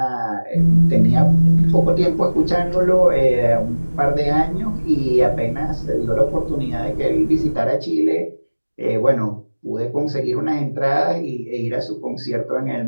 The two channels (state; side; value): inverted; both; correlation -1.00